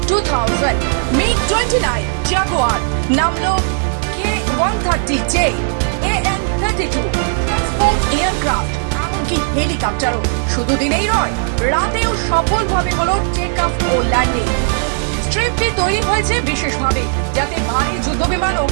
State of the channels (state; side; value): silent; left; digital silence